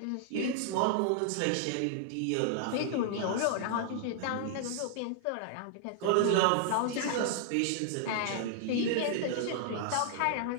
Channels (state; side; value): different; both; correlation -0.01